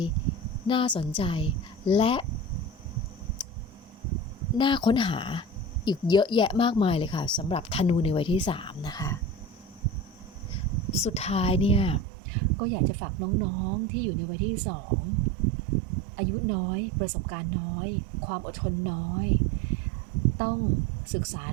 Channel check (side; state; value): left; drops out; at 12.1 s